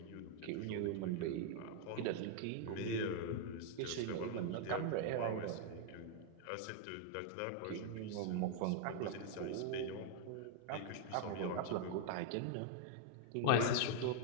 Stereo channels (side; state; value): both; different; correlation 0.00